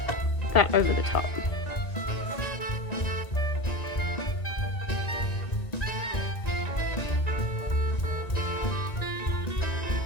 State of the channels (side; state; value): right; late; 1.9 ms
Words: that over the top.